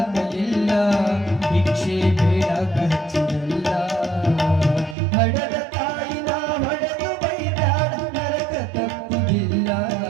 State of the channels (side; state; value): left; drops out; at 5.0 s